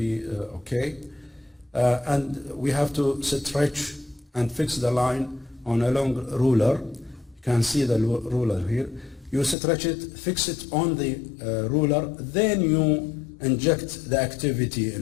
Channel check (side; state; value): right; drops out; at 9.6 s